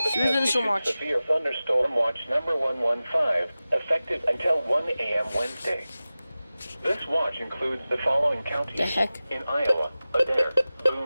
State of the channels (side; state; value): both; inverted; correlation -0.96